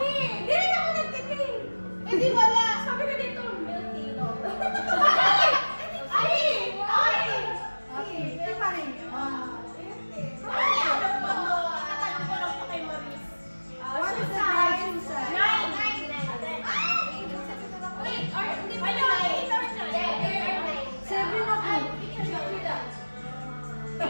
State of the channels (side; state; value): both; inverted; correlation -1.00